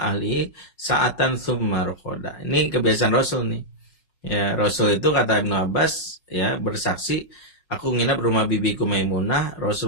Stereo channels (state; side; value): late; right; 5.5 ms